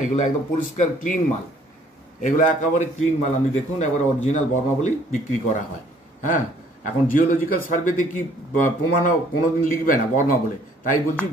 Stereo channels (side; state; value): both; normal; correlation 0.60